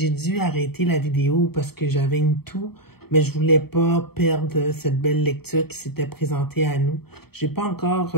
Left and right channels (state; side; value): late; right; 0.96 ms